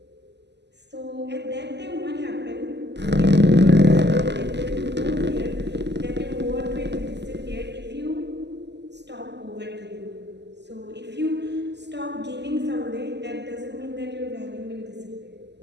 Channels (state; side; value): late; left; 0.50 ms